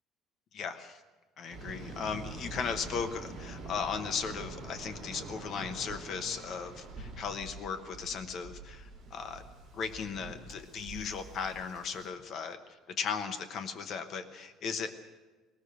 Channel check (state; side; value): quieter; right; 4.8 dB